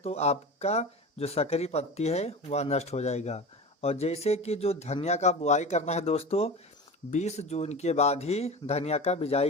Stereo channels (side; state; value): both; normal; correlation 0.30